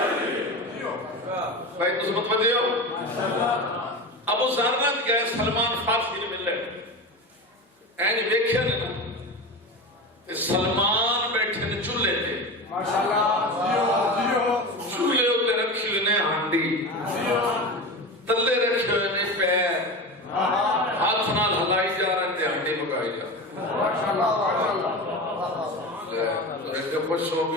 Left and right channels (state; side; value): normal; both; correlation 0.26